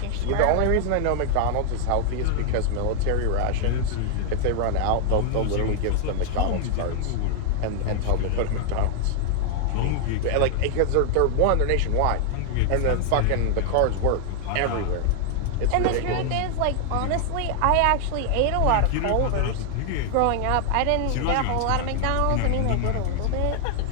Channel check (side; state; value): both; different; correlation 0.00